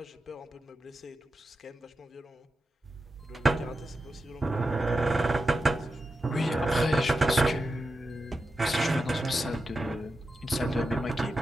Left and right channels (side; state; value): both; normal; correlation 0.90